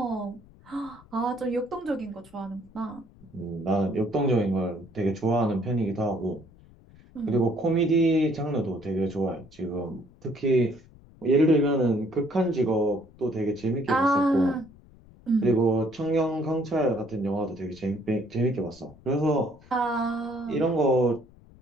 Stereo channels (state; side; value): noise; left; rumble, 25 dB below the sound